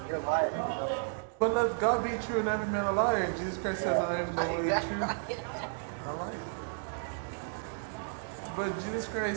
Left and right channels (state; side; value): silent; left; 56 dB below the other